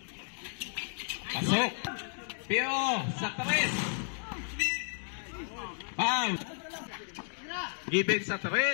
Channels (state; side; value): silent; right; digital silence